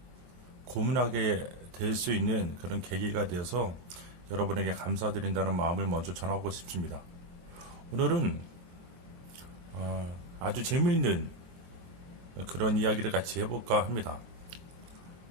고민하게 될 수 있는 그런 계기가 되어서 여러분에게 감사드린다는 마음을 먼저 전하고 싶습니다. 오늘은 아주 재미있는 그런 이야기를 같이 해볼까 합니다.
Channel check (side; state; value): left; late; 23 ms